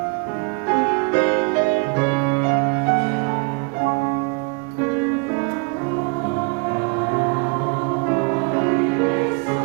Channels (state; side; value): quieter; left; 36.0 dB